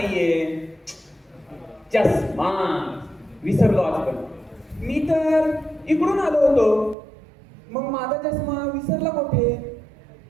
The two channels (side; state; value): left; drops out; at 7.0 s